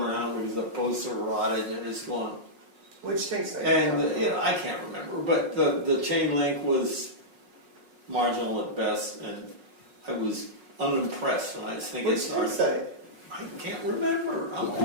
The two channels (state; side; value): late; left; 5.5 ms